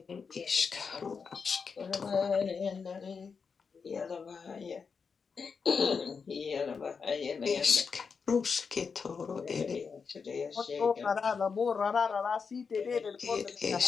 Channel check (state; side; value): quieter; right; 5.6 dB